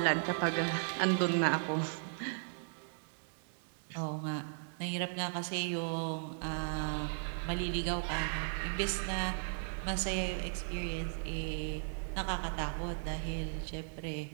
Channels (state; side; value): silent; left; digital silence